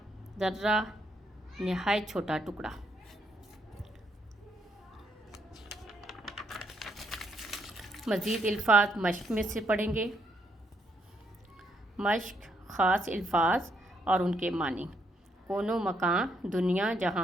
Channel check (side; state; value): both; normal; correlation 0.74